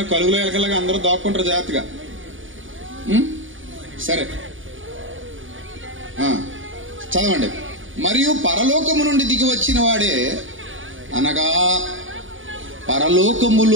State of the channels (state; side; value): late; left; 0.57 ms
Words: కలుగులో ఎలకలాగా అందరూ దాక్కుంటారు జాగ్రత్తగా. సరే చదవండి. మరియు పరలోకము నుండి దిగి వచ్చిన వాడే, అనగా